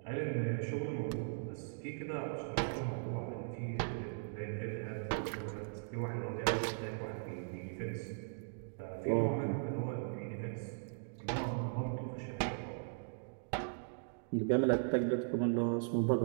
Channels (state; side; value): silent; left; digital silence